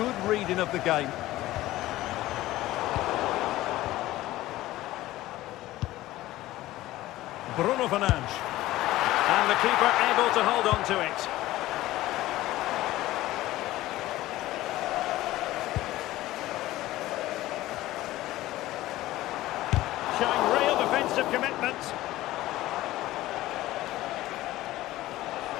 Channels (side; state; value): right; quieter; 16.4 dB